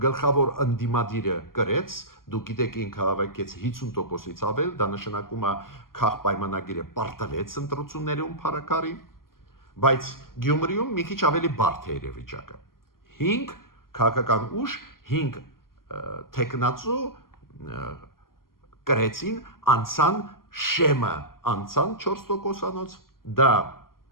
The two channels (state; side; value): late; right; 0.92 ms